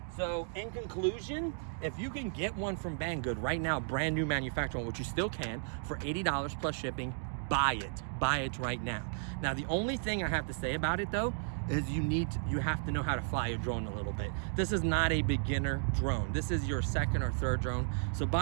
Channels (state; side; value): silent; left; digital silence